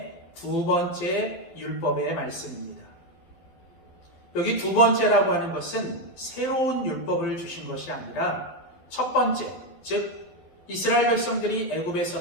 두 번째 율법의 말씀입니다. 여기 두 번째라고 하는 것은 새로운 율법을 주신 것이 아니라 첫 번째, 즉 이스라엘 백성들이 애굽에서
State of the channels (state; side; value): late; right; 12 ms